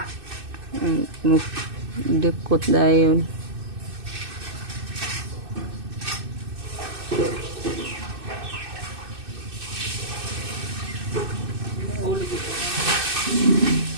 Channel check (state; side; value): late; left; 2.6 ms